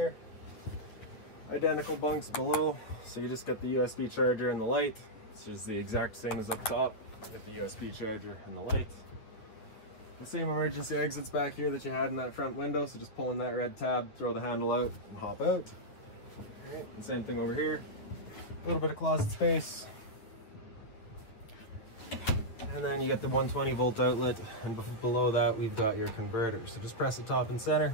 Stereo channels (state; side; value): late; right; 9.4 ms